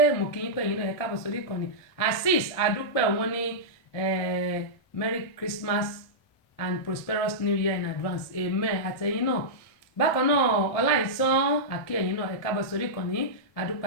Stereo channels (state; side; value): late; right; 1.7 ms